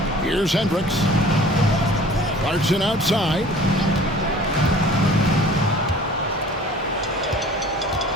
Here's Hendricks. Clarkson outside.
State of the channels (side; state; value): both; normal; correlation 0.48